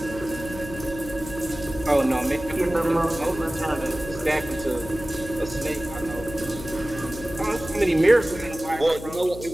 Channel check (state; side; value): noise; left; hum, 12 dB below the sound